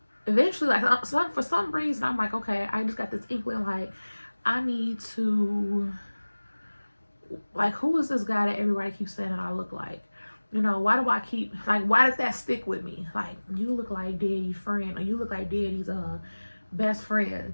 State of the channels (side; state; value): both; inverted; correlation -1.00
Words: eventually, like for some reason I'm like, okay, I just got this inkling, like I need to, like, who is this guy that everybody keeps saying that I look like? You know, why do I keep, like, why did that stick with me? Like, you look like daddy's friend, or you look like daddy's best friend